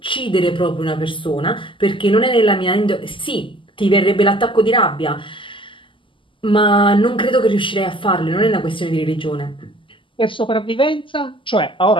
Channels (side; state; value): right; late; 0.25 ms